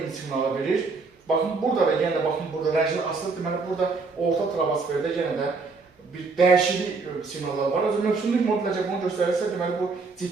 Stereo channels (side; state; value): left; quieter; 4.2 dB